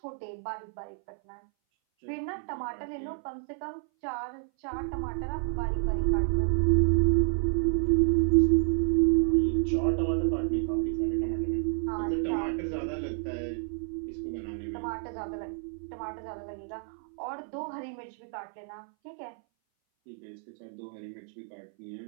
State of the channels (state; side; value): silent; left; 58 dB below the other